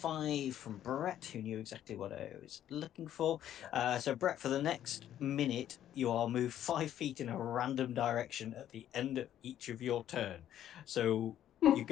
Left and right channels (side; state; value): right; quieter; 11.3 dB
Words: from Brett, who knew exactly what I was looking for. So Brett, for the next minute, you are moved 5 feet in a random direction at the end of each of your turn. So your